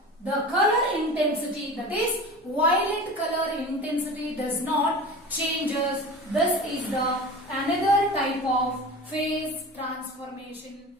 the color intensity, that is violet color intensity, does not changes. This is the another type of phase transformation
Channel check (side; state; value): both; normal; correlation 0.34